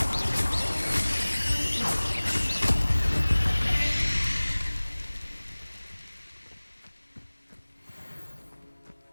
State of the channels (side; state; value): both; inverted; correlation -1.00